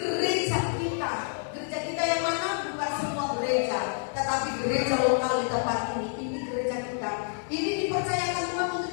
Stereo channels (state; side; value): silent; right; digital silence